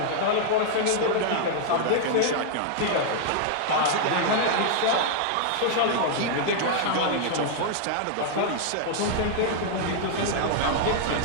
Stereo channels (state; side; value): different; both; correlation -0.01